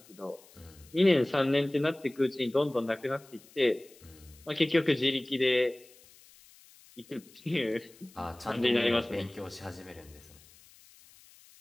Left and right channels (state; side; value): noise; left; hiss, 25 dB below the sound